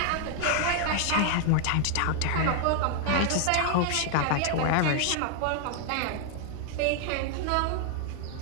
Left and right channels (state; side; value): different; both; correlation 0.00